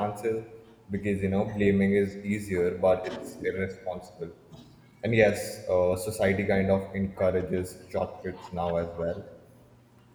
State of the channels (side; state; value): both; identical; correlation 1.00